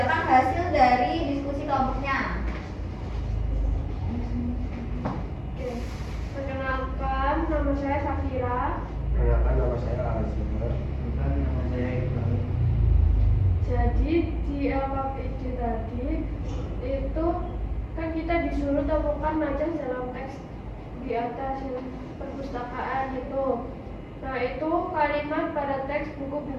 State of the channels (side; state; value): both; identical; correlation 1.00